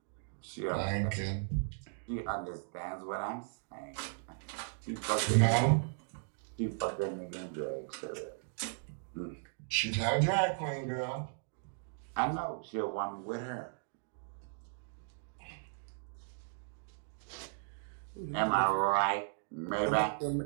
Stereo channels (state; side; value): silent; left; digital silence